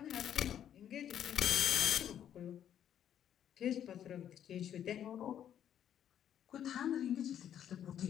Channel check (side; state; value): right; quieter; 9.9 dB